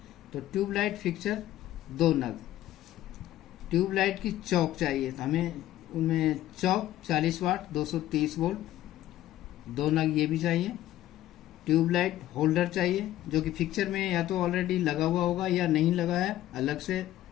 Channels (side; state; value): right; quieter; 13.9 dB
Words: तो ट्यूबलाइट फिक्सर 2 नग। ट्यूबलाइट की चौक चाहिए, तो हमें उनमें चौक 40 वाट 230 वोल्ट 2 नग ये भी चाहिए। ट्यूबलाइट होल्डर चाहिए, जो कि फिक्सर में या तो ऑलरेडी लगा हुआ होगा या नहीं लगा है, अलग से